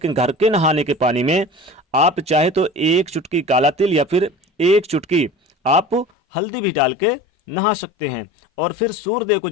घर के नहाने के पानी में आप चाहे तो 1 चुटकी काला तिल या फिर 1 चुटकी आप हल्दी भी डाल के नहा सकते हैं। और फिर सूर्यदेव को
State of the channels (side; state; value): right; drops out; at 6.1 s